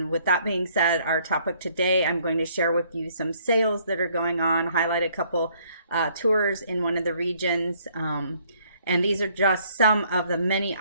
with that being said, our topic today, I'm going to share with you some sales that are going on, highlight a couple tours in one of the regions. And these are just some of the many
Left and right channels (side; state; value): both; inverted; correlation -0.64